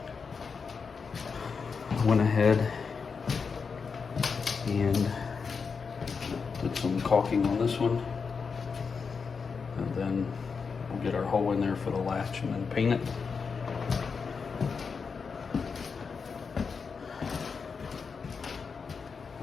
Went ahead and did some caulking on this one, and then we'll get our hole in there for the latch and then paint it.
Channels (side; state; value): right; quieter; 5.4 dB